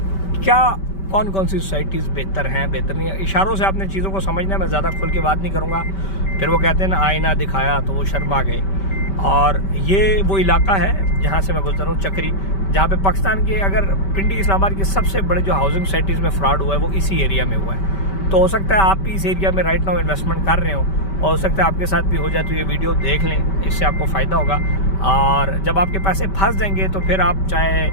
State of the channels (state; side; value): late; right; 5.2 ms